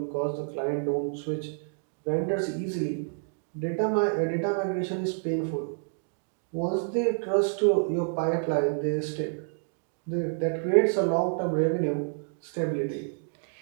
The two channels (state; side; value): silent; left; digital silence